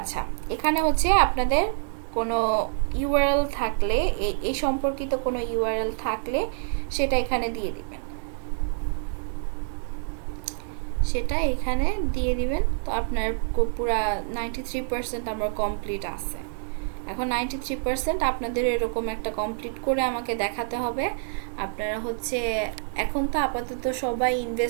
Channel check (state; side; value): silent; left; digital silence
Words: এখানে হচ্ছে আপনাদের কোনো ইউআরএল থাকলে, এই সম্পর্কিত কোনো ইউআরএল থাকলে সেটা এখানে দিয়ে দিবেন, সেটা এখানে দিয়ে দিবেন। তো আপনার পুরা 93% আমার কমপ্লিট আছে। এখন 93% আপনাদের এরকম একটা কমপ্লিট করে আমাকে দেখাতে হবে। আপনারা হচ্ছে এখন তো আপাতত সবাই